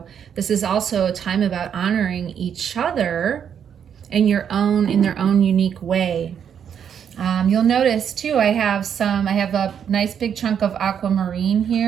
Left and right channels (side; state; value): left; quieter; 8.2 dB